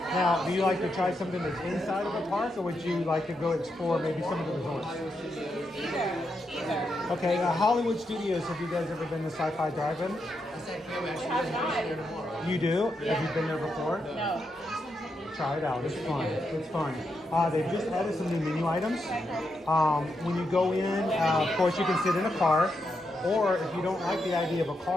do you like to try something that's inside of a park, or would you like to go explore maybe some of the resorts? Either. Okay, Hollywood Studios, have you guys ever been to Sci-Fi Drive-In? You do? Yeah. Have you been there before? No. Try it out. It's fun. It's fun. They've just added some new menu items. When you go in, of course, you can sit in a car, or if you don't like the idea of a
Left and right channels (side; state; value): both; normal; correlation 0.83